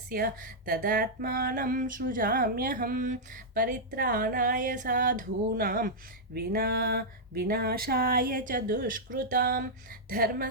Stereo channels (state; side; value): normal; both; correlation -0.07